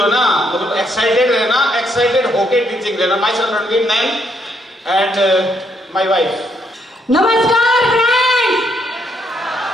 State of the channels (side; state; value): both; normal; correlation 0.73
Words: है ना मतलब एक्साइटेड रहना, एक्साइटेड होके टीचिंग देना। My son Ranveer Nain and my wife. नमस्कार फ्रेंड।